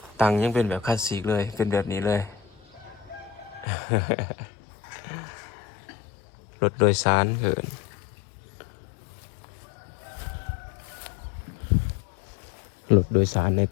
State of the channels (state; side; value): drops out; right; at 3.7 s